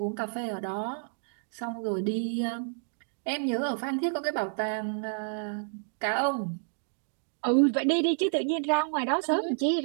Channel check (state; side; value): silent; left; digital silence